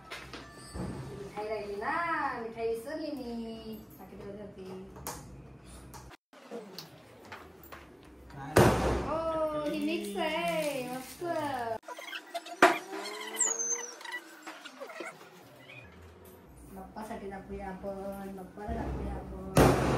मिठाई राहिली ना मिठाई विसरली मी हो ही मिक्स आहे मस्त बाप्पासाठी दाखवूया आपण बाप्पाला दाखवूया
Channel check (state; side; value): identical; both; correlation 1.00